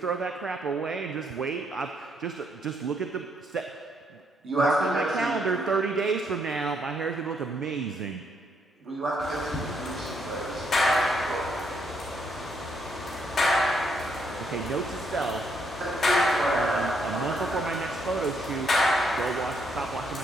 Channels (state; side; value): normal; both; correlation 0.73